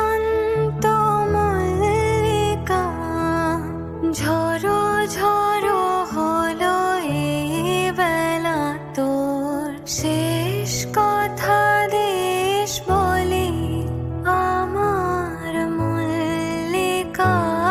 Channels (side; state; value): both; identical; correlation 1.00